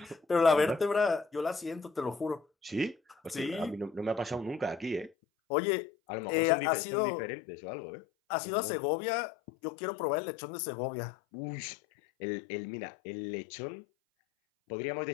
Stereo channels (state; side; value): drops out; right; at 5.1 s